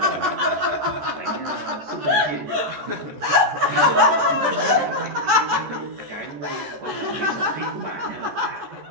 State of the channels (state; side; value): late; left; 14 ms